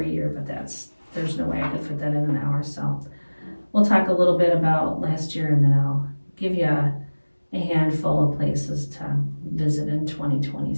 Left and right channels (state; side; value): inverted; both; correlation -1.00